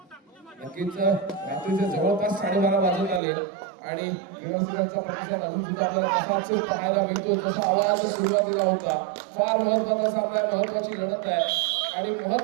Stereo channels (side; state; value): left; drops out; at 3.2 s